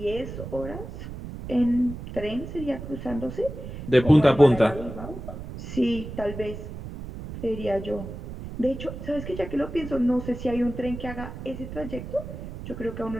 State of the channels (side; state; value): right; noise; rumble, 10 dB below the sound